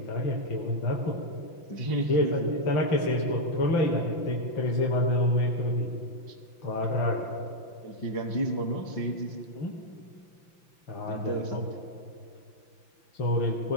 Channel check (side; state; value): right; late; 5.9 ms